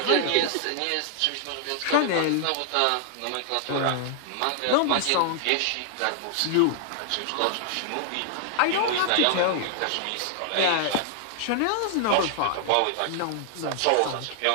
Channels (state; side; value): different; both; correlation 0.00